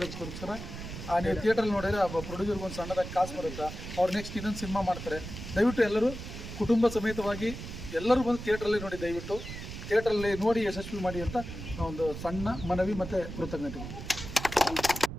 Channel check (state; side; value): noise; right; rumble, 9 dB below the sound